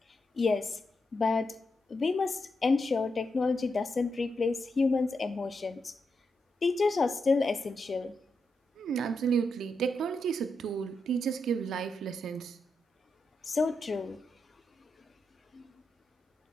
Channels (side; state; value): both; normal; correlation 0.85